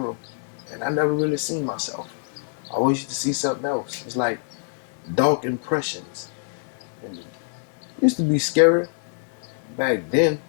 and I never really seen myself. I always used to see something else. It's like dark impressions. And it used to be scary back then,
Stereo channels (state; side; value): silent; right; digital silence